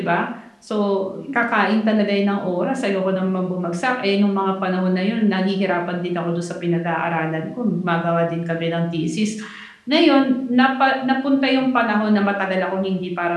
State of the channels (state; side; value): identical; both; correlation 1.00